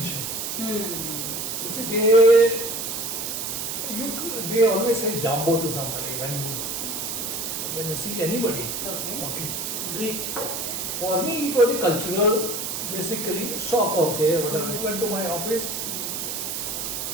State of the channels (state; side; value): noise; right; hiss, 3 dB below the sound